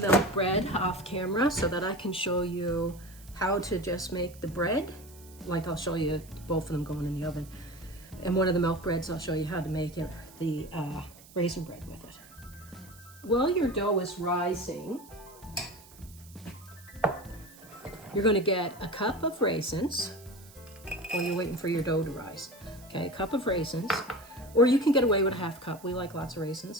bread off camera so that I can show you how to just make the bread. Like I'll show you both of them going in the oven. And one of the milk breads, I'll show you how to make it, the raisin bread with it. While your dough is rising, you're going to get a cup of raisins while you're waiting for your dough to rise. Okay, a cup of raisins, or you can get away with a half cup. We like lots of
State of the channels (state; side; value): noise; right; hiss, 22 dB below the sound